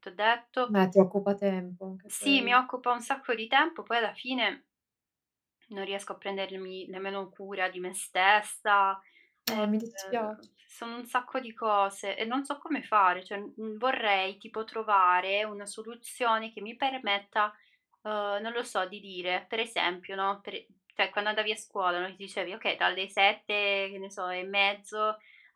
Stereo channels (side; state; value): both; identical; correlation 1.00